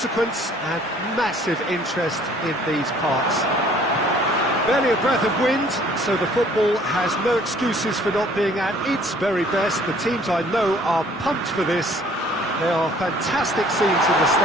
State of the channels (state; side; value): normal; both; correlation 0.56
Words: and massive interest in these parts. Barely a breath of wind, so the football has no excuses for not being at its very best. The teams I know are pumped for this. There are fantastic scenes in the